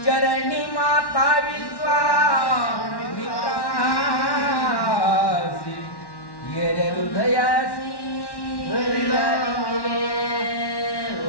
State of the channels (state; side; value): late; right; 1.1 ms